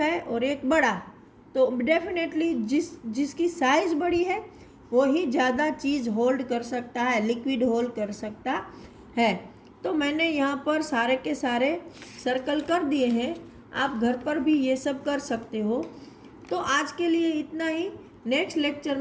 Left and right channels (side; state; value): both; identical; correlation 1.00